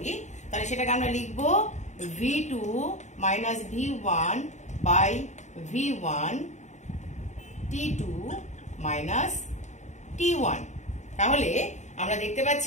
তাহলে সেটাকে আমরা লিখব V2 minus V1 by V1 T2 minus T1। তাহলে আমরা দেখতে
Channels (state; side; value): late; right; 0.34 ms